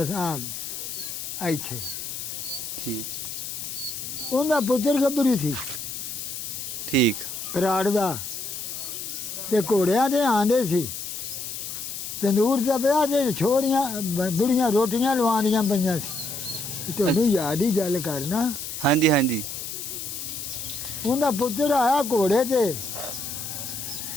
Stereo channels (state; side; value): noise; left; hiss, 7 dB below the sound